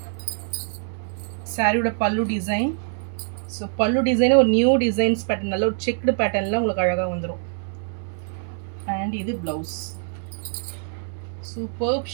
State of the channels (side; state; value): left; silent; 62 dB below the other